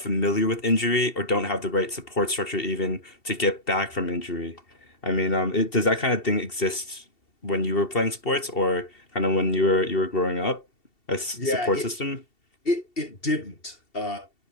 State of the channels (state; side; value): late; right; 2.7 ms